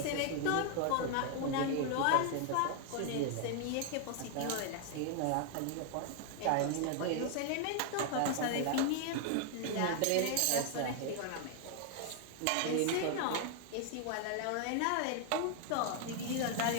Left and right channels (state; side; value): different; both; correlation 0.00